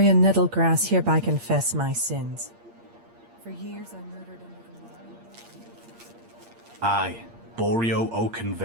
Nettlegrass, hereby confess my sins. For years I murdered under the I, Borio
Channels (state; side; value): late; left; 8.6 ms